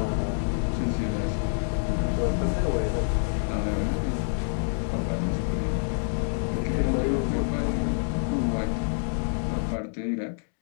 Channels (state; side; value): silent; right; digital silence